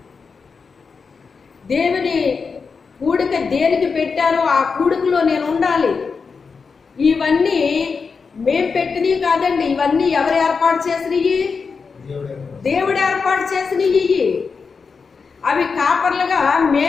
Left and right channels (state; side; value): quieter; right; 5.2 dB